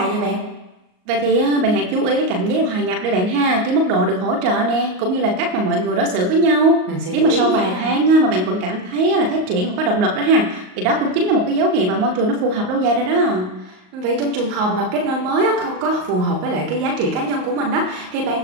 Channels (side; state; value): left; late; 38 ms